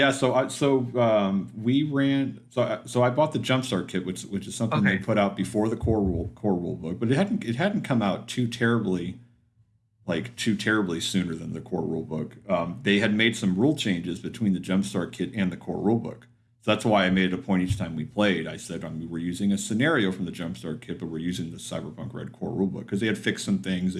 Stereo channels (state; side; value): identical; both; correlation 1.00